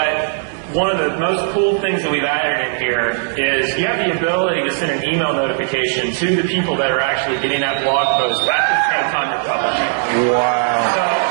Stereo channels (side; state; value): left; silent; digital silence